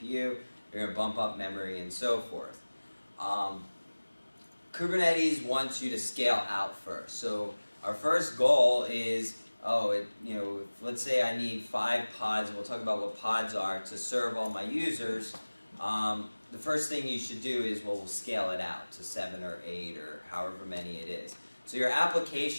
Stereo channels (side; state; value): both; inverted; correlation -1.00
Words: you're going to bump up memory, and so forth. Kubernetes wants you to scale out first. So our first goal is, let's say I need 5 pods, and we'll talk about what pods are, to serve all my users. The first thing you should do is, we'll scale it out to 7 or 8 or however many it is. So your